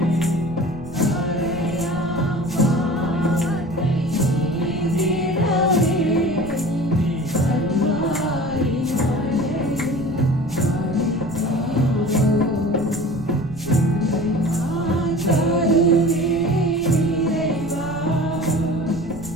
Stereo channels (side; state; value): right; noise; rumble, 15 dB below the sound